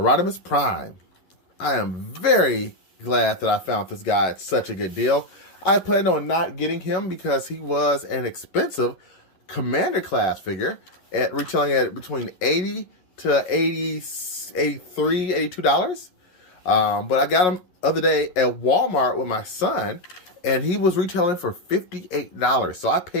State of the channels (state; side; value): late; right; 11 ms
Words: Prime. I am very glad that I found this guy at such a good deal. I planned on not getting him because he was an expensive Commander class figure, at retailing at between $80 to $82. But I got him the other day at Walmart with my son, and he was retailing for $58. So I